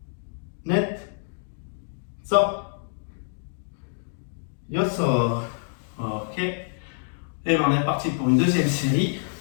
net, sort, yo sort. Ok. Et ben on est parti pour une deuxième série.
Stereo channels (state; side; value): silent; right; digital silence